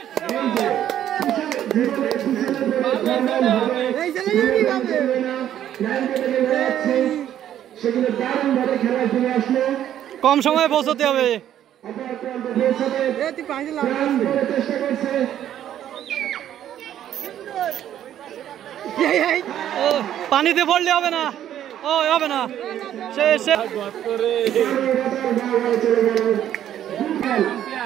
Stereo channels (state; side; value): quieter; left; 11.0 dB